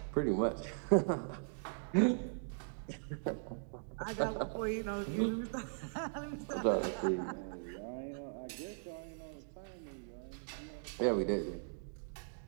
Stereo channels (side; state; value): left; silent; digital silence